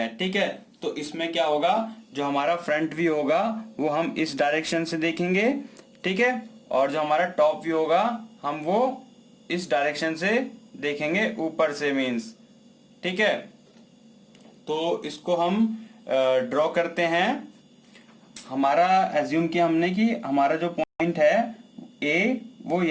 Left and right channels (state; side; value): identical; both; correlation 1.00